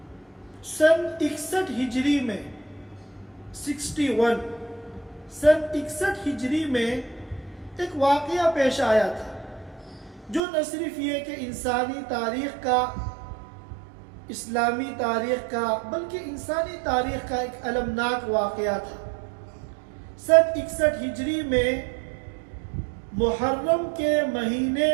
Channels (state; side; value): drops out; left; at 10.4 s